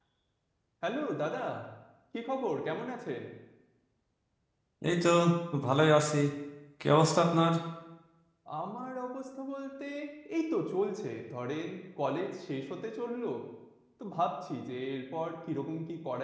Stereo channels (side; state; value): both; identical; correlation 1.00